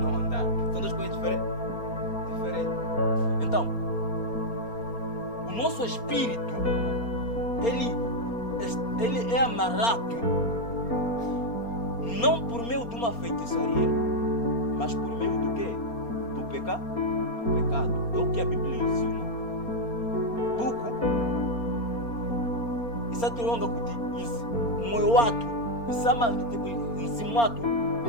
Nosso espírito, ele é amarrado não por meio de uma feitiçaria, mas por meio do quê? Do pecado. É o que a Bíblia ensina. Buco, isso é longa kuti, moyo watu, isama tipo nzimuatu,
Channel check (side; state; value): right; late; 4.3 ms